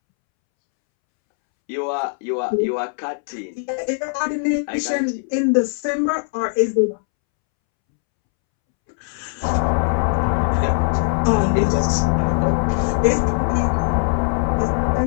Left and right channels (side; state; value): right; silent; 65 dB below the other